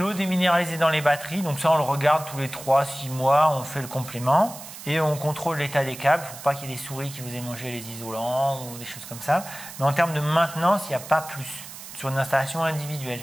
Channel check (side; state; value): right; noise; hiss, 14 dB below the sound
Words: déminéralisée dans les batteries, donc ça on le regarde tous les 3-6 mois, on fait le complément. Et on contrôle l'état des câbles, il ne faut pas qu'il y ait des souris qui vous aient mangé les isolants ou des choses comme ça. Mais en termes de maintenance, il n'y a pas plus sur une installation individuelle.